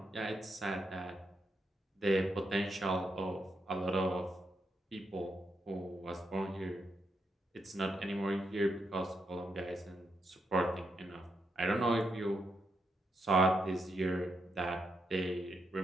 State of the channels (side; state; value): both; normal; correlation 0.81